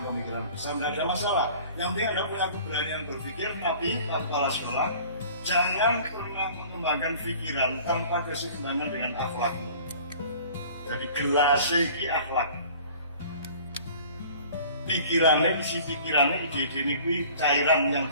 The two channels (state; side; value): inverted; both; correlation -0.47